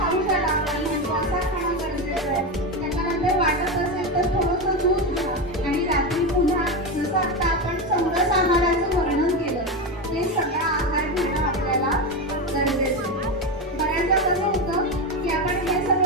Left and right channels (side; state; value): both; normal; correlation 0.15